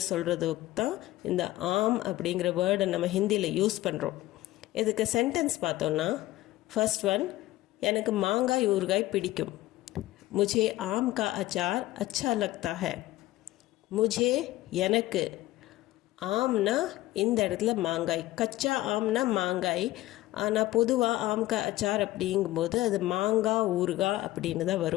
சொல்கிறதுக்கு தான் இந்த ஆம் அப்படிங்கிற வேர்டை நம்ம ஹிந்தியில் யூஸ் பண்ணுறோம். இதுக்கு சென்டென்ஸ் பார்த்தோன்னா, ஃபர்ஸ்ட் ஒன், எனக்கு மாங்காய் ஊறுகாய் பிடிக்கும். मुझे आम का अचार अच्छा लगता है. मुझे எனக்கு, ஆம்னா இந்த இடத்துல மாங்காய், கச்சா ஆம்னா மாங்காய், ஆனால் பொதுவாக ஆம் கா அச்சார் அப்படிங்கும்போது அது மாங்காய் ஊறுகாய் அப்படின்னு தான்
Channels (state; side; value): quieter; right; 16.7 dB